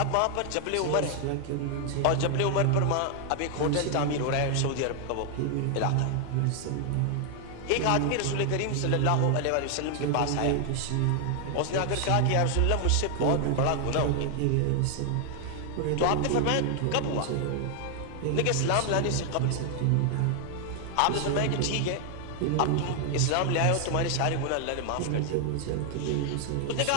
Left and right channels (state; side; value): different; both; correlation 0.00